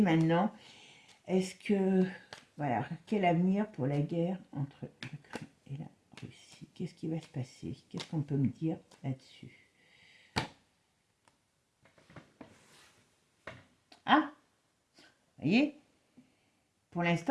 Est-ce que... Voilà, quel avenir pour la guerre entre l'Ukraine et la Russie? Qu'est-ce qui va se passer? Qu'est-ce qu'on peut me dire là-dessus? Ah, vous voyez, pour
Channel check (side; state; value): both; identical; correlation 1.00